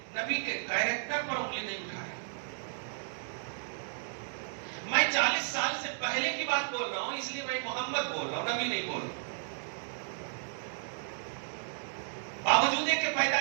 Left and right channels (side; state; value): left; silent; digital silence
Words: نبی کے کیریکٹر پر انگلی نہیں اٹھایا. میں 40 سال سے پہلے کی بات بول رہا ہوں، اس لیے میں محمد بول رہا ہوں، نبی نہیں بول رہا. باوجود کہ